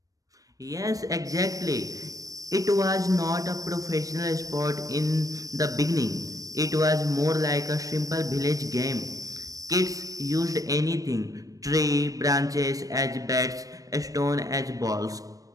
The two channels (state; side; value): late; left; 0.17 ms